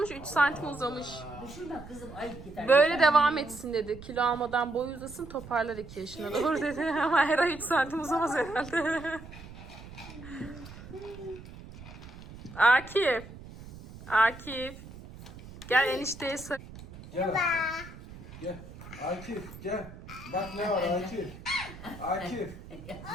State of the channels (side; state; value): right; noise; rumble, 15 dB below the sound